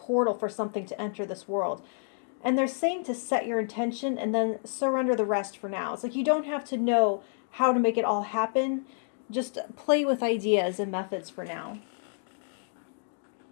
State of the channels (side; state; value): right; silent; digital silence